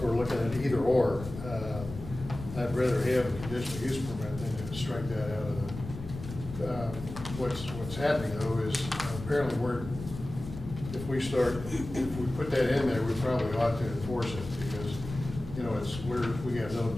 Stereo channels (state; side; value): noise; left; rumble, 11 dB below the sound